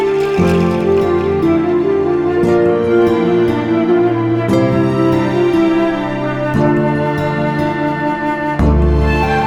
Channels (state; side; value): identical; both; correlation 1.00